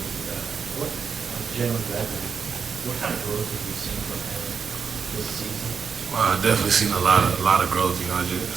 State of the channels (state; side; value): quieter; left; 6.0 dB